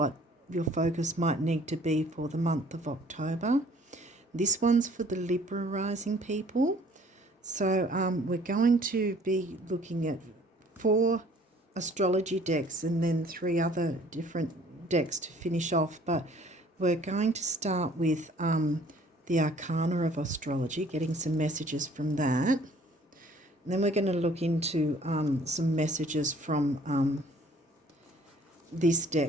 your focus might need to be for the month of October. This one's for the Libra rising people. So we're going to be looking at 4 astrology decks and then 3 other different decks to finish off. But we're going to start with the Arcana of Astrology, getting some messages from that. And then we're going to look into some messages from this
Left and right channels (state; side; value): normal; both; correlation 0.56